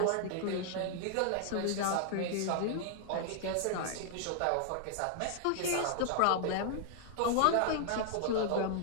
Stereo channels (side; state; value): both; different; correlation 0.00